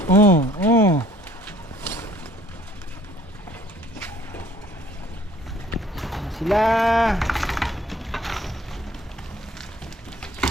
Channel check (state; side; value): normal; both; correlation 0.56